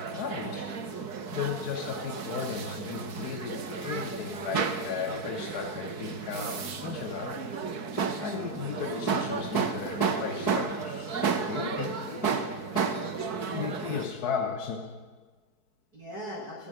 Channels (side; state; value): right; late; 4.6 ms